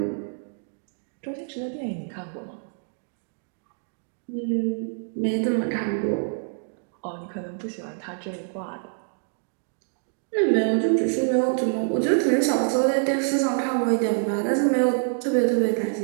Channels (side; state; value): left; silent; digital silence